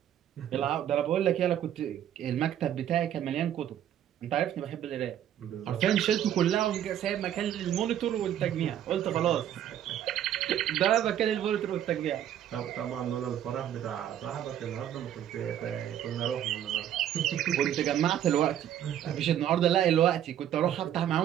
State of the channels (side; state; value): left; quieter; 10.7 dB